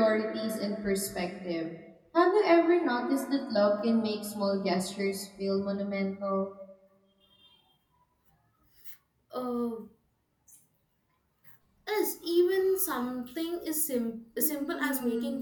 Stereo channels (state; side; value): identical; both; correlation 1.00